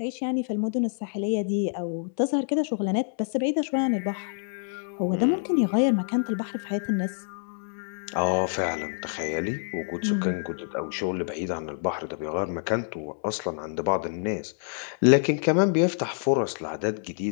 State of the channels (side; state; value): right; silent; digital silence